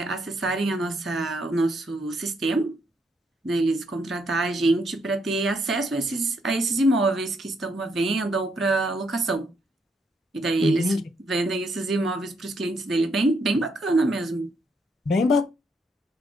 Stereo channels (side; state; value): both; normal; correlation 0.74